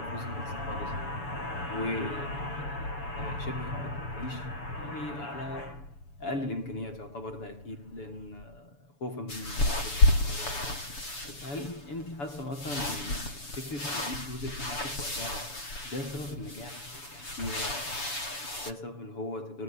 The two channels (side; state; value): right; late; 7.0 ms